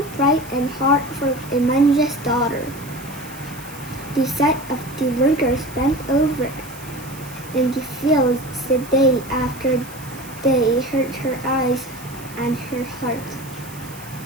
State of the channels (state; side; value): noise; right; hiss, 18 dB below the sound